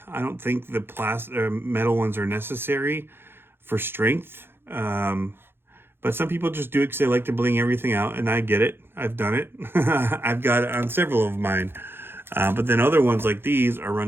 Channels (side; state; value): left; late; 0.11 ms